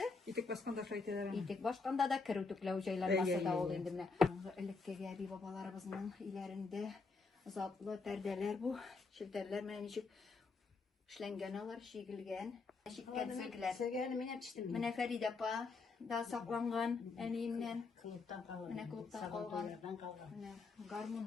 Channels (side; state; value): right; quieter; 4.3 dB